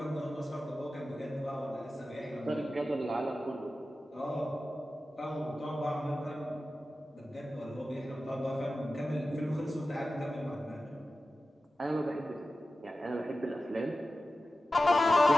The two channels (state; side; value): normal; both; correlation 0.94